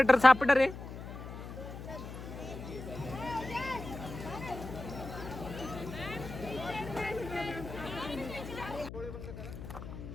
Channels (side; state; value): left; noise; hum, 10 dB below the sound